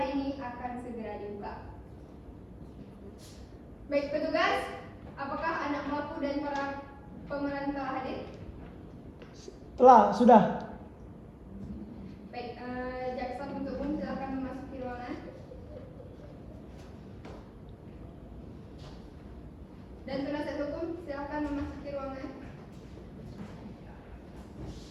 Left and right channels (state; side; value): identical; both; correlation 1.00